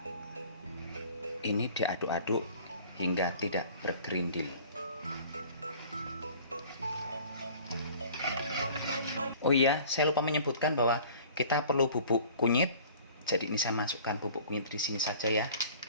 Ini diaduk-aduk hingga tidak bergerindil. Oh iya, saya lupa menyebutkan bahwa kita perlu bubuk kunyit. Jadi ini saya masukkan bubuk kunyit di sini saja ya.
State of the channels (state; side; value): inverted; both; correlation -0.48